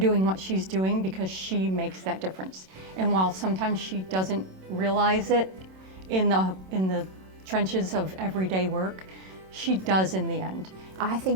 what she's doing, because she makes that difference. And while sometimes she doesn't realize it in the trenches of everyday work, she does in the end. I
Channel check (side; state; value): left; late; 27 ms